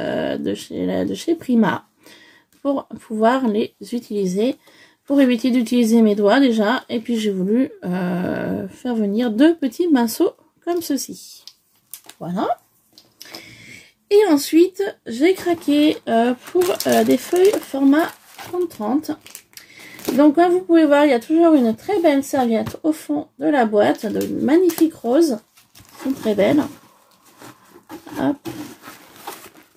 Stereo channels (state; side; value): identical; both; correlation 1.00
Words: chez Prima, pour pouvoir les utiliser, pour éviter d'utiliser mes doigts déjà. Et puis, j'ai voulu faire venir deux petits pinceaux comme ceci. Voilà. Et ensuite, j'ai craqué pour des feuilles format 30-30. Donc, comme vous pouvez voir, il y a toujours une très belle serviette au fond de la boîte, de magnifiques roses. Sont très belles. Hop.